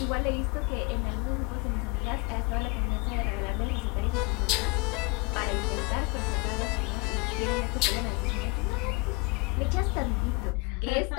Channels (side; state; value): right; quieter; 28.2 dB